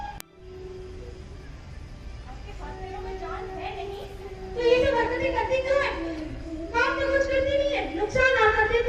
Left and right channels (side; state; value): both; identical; correlation 1.00